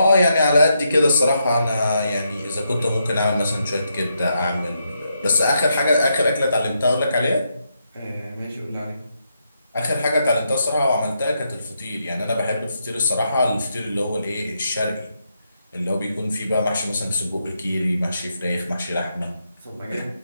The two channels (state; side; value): inverted; both; correlation -0.81